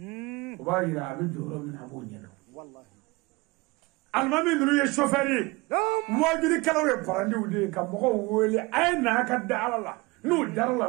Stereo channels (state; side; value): quieter; left; 24.1 dB